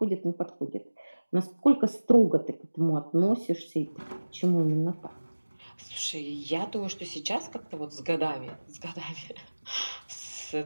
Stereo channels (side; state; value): both; inverted; correlation -1.00